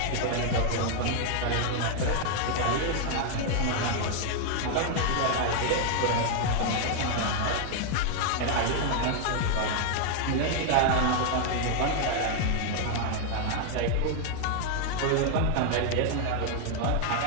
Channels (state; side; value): different; both; correlation 0.00